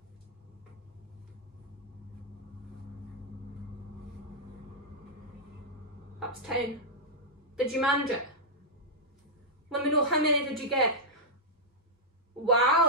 That's 10. Did you manage it? Let me know how many did you get. Wow,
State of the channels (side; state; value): both; normal; correlation -0.08